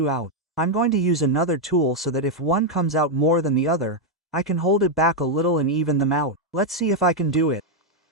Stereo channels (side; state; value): both; normal; correlation 0.00